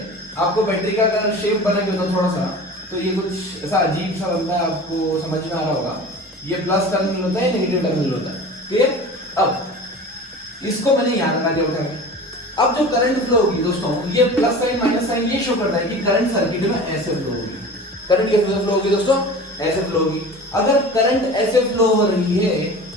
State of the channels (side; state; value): both; normal; correlation 0.37